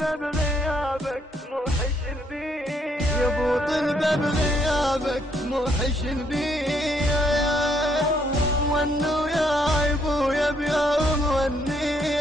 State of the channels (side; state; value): both; normal; correlation 0.71